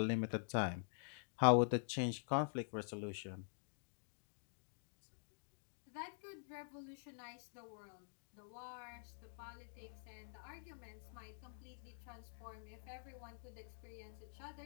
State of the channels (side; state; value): right; silent; digital silence